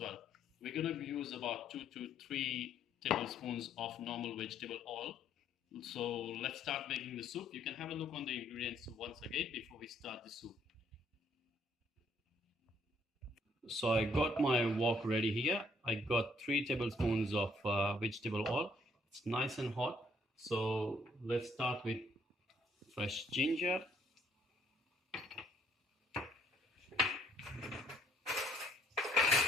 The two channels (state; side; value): normal; both; correlation 0.66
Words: We're gonna use about 2 to 3 tablespoons of normal vegetable oil. So let's start making the soup. You can have a look on the ingredients once again before we start the soup. So I got my wok ready here. I got 3 tablespoons of vegetable oil. It's nice and hot. So let's start with fresh ginger.